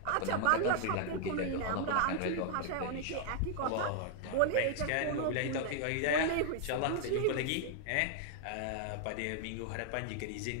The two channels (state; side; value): different; both; correlation 0.00